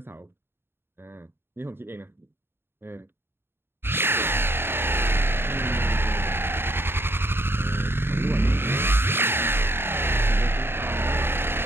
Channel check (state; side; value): late; left; 0.11 ms